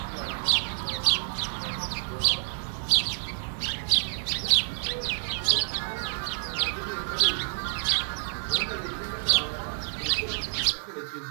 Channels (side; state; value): left; silent; 59 dB below the other